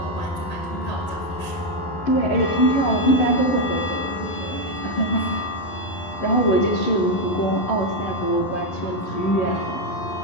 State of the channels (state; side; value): late; right; 11 ms